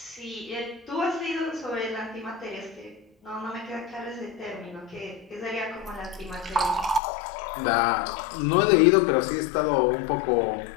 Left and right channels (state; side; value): drops out; right; at 7.0 s